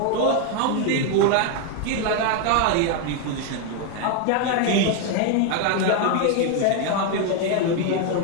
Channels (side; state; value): both; different; correlation 0.01